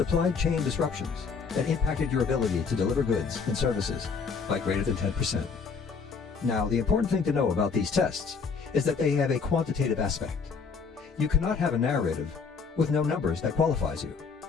chain disruptions that impacted your ability to deliver goods and services by greater than 10%. Now, the important thing to know about these tests is that they have a quantitative aspect. You cannot have a narrative with no numbers that qualifies you.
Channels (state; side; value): quieter; right; 5.4 dB